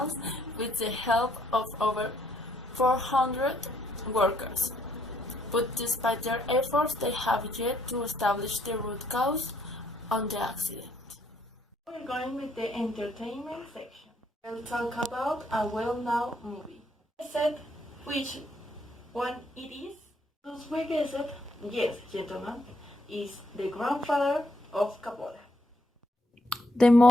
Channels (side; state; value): both; normal; correlation 0.71